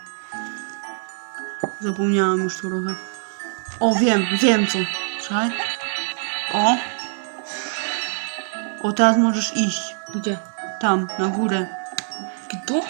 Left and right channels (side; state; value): left; silent; 55 dB below the other